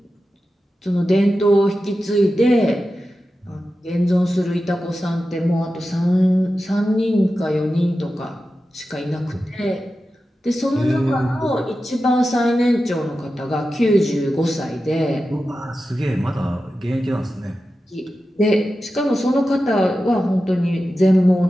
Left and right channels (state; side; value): normal; both; correlation 0.92